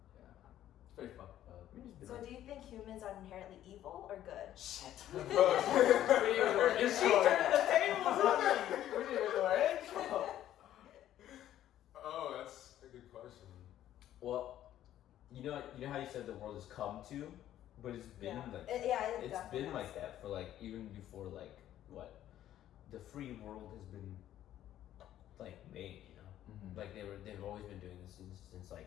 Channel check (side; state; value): right; quieter; 12.2 dB